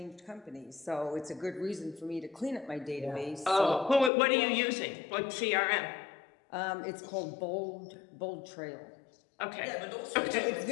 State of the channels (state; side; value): drops out; right; at 4.1 s